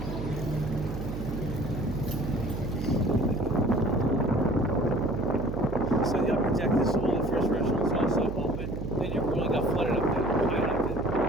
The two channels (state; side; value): noise; right; hum, 6 dB below the sound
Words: So the upper deck, this is one of the first restaurants also open. They never really got flooded up there. I like